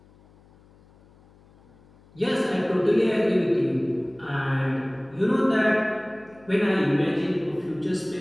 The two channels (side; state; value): left; noise; hum, 28 dB below the sound